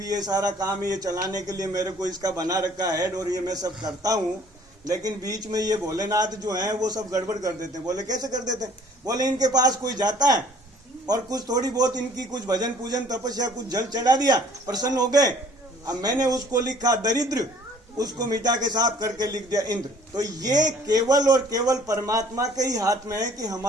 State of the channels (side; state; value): both; normal; correlation 0.55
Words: ये सारा काम ये चलाने के लिए मेरे को इसका बना रखा है और ये मैं सब करता हूँ, लेकिन बीच में ये भोलेनाथ जो है वो सब गड़बड़ कर देते हैं। बोले कैसे कर देते हैं? बोले इनके पास कोई जाता है और कुछ थोड़ी बहुत इनकी कुछ भजन पूजन तपस्या कुछ जल चढ़ा दिया, प्रसन्न हो गए। अब मैंने उसको लिखा दरिद्र, उसको मिटा के साफ करके लिख दिया इंद्र। तो ये केवल और केवल परमात्मा के ही हाथ में है कि